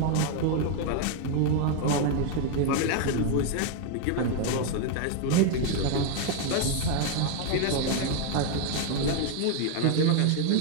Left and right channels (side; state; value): both; different; correlation 0.01